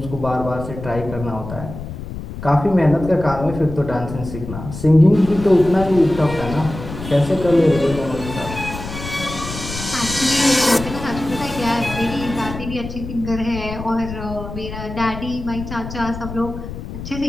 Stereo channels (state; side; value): noise; left; rumble, 9 dB below the sound